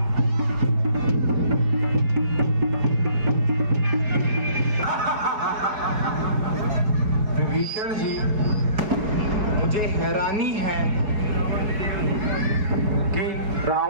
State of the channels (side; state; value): left; late; 4.7 ms